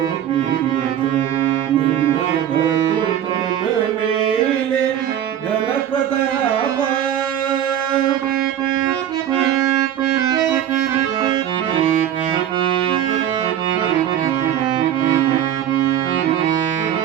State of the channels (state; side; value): quieter; left; 10.6 dB